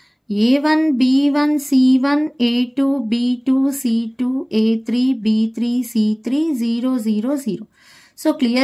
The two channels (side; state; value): both; identical; correlation 1.00